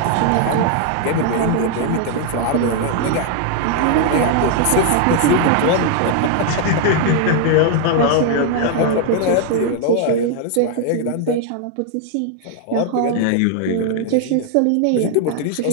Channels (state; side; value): different; both; correlation 0.00